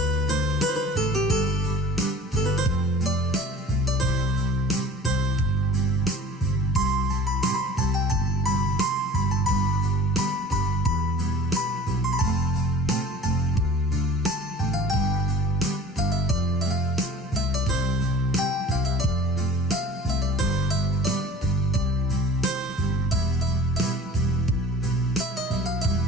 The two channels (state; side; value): normal; both; correlation 0.44